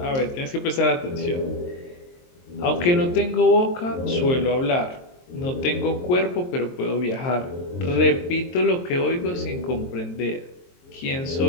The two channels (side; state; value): right; late; 23 ms